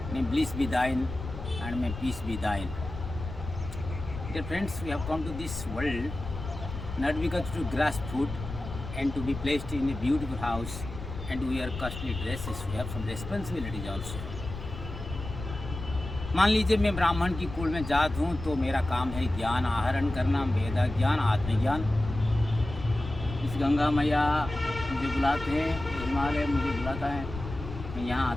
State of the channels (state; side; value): noise; left; rumble, 9 dB below the sound